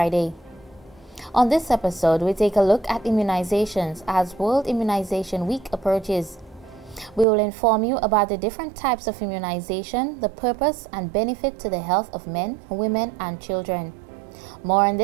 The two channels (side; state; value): left; drops out; at 7.2 s